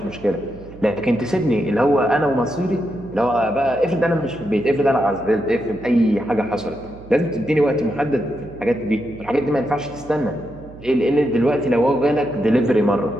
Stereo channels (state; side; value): noise; right; hum, 19 dB below the sound